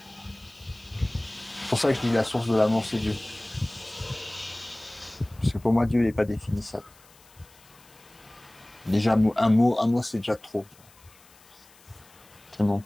C'est pour ça que je dis la source de l'amour, c'est Dieu. Parce que pour moi, Dieu, il n'est pas définissable. Déjà, un mot, c'est déjà trop. Tellement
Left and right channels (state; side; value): noise; left; hiss, 27 dB below the sound